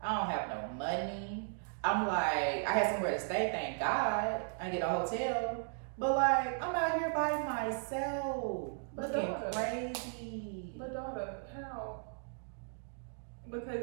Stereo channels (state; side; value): silent; left; digital silence